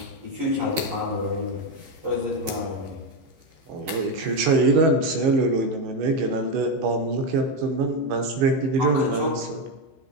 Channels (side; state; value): left; late; 15 ms